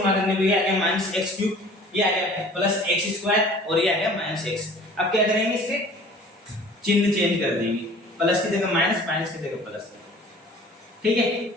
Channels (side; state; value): both; normal; correlation 0.48